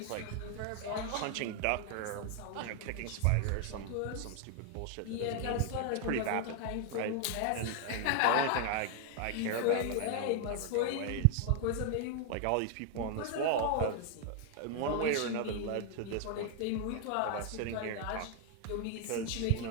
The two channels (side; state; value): both; different; correlation 0.00